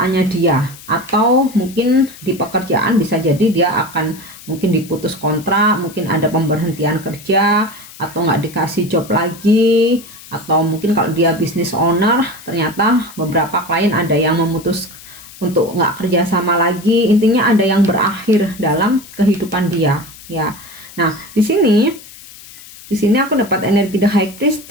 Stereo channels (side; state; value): left; noise; hiss, 19 dB below the sound